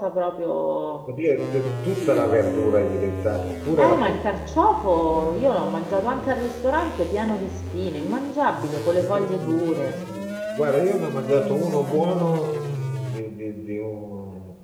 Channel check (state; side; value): identical; both; correlation 1.00